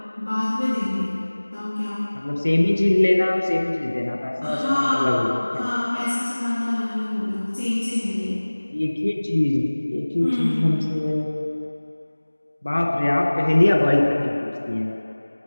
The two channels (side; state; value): both; inverted; correlation -1.00